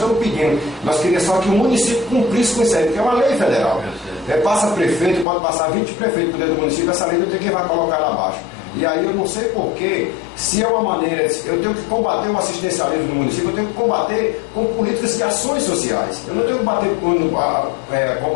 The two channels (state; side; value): drops out; right; at 5.2 s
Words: pedindo, nós queríamos só que o município cumprisse com isso aí, porque é uma lei federal. Passa prefeito, pode passar 20 prefeitos por dentro do município, essa lei não tem quem vai colocar lá abaixo. E aí eu não sei porquê, se é uma maneira, eu tenho que combater o assistencialismo no município, eu tenho que combater com políticas de ações sociais. Eu não tenho que